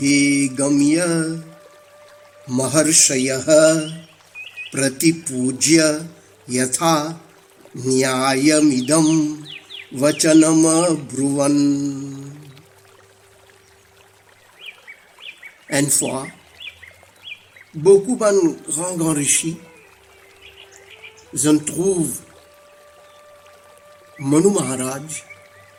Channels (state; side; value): identical; both; correlation 1.00